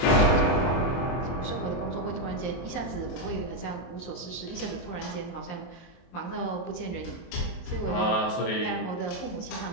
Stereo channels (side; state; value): right; late; 23 ms